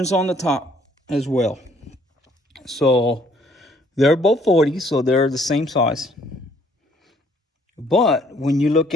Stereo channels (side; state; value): both; normal; correlation 0.63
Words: on the top as well. So they're both 40, so they're the same size. But when you look